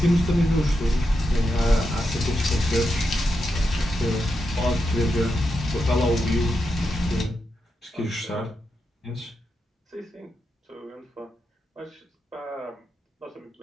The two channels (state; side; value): normal; both; correlation 0.86